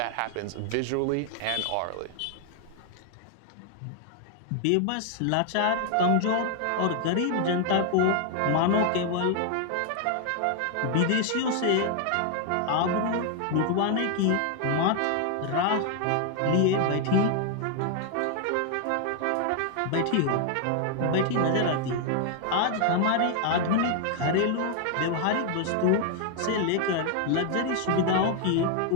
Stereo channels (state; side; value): different; both; correlation 0.00